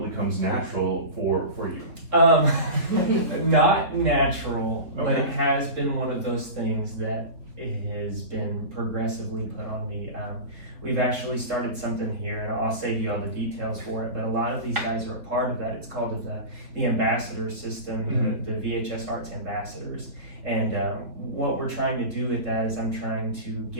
comes natural for you. Not natural, Okay. but it has been one of those things that has been progressively put on me. We've actually started something here, and I'll save you all the details for it, but a lot of these guys are a part of that. It's called the ambassador system, the VHS Arts Ambassadors. And what we're trying to do with that is I'm trying to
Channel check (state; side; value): late; left; 3.6 ms